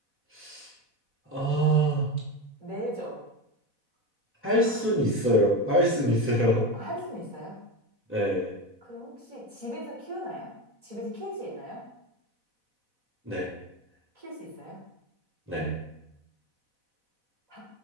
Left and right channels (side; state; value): left; late; 4.0 ms